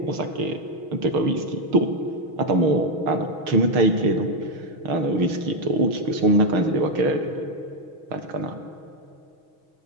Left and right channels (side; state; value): left; late; 6.3 ms